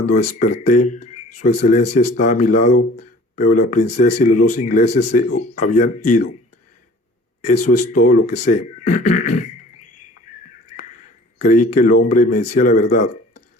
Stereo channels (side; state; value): both; normal; correlation 0.49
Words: desperté, Su Excelencia estaba a mi lado, pero la princesa y los dos ingleses se habían ido. Eso es todo lo que sé. Creí que el hombre me decía la verdad.